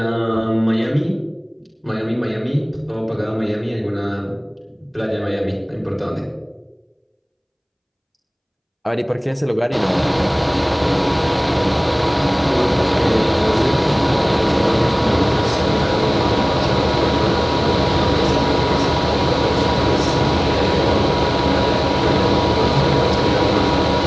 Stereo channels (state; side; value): identical; both; correlation 1.00